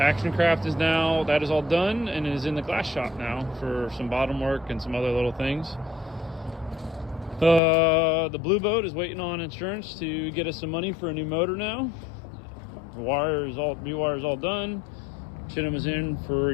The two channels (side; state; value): right; drops out; at 7.6 s